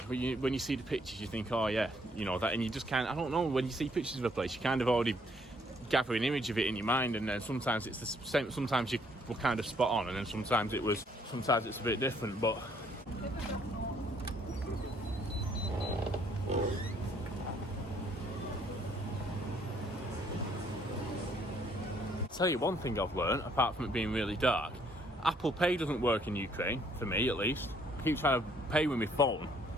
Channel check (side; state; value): both; normal; correlation 0.66